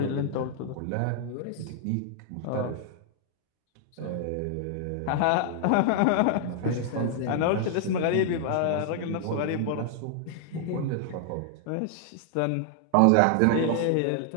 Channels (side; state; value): both; different; correlation 0.00